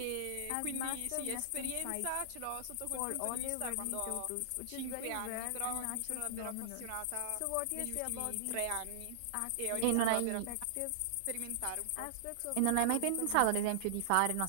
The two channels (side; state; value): both; different; correlation -0.01